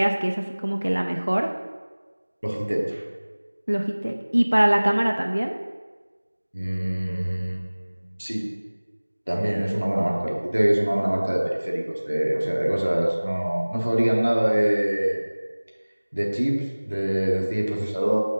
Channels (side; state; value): both; inverted; correlation -1.00